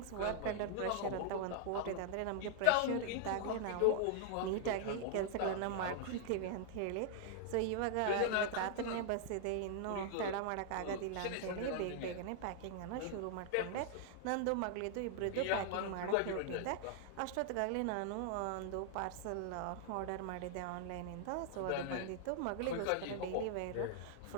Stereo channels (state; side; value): different; both; correlation -0.01